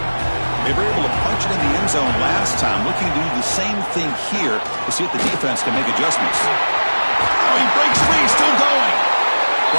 They were able to punch it in the end zone last time, looking to do the same thing here to see if the defense can make adjustments. Oh, he breaks free, still going.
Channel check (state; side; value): inverted; both; correlation -1.00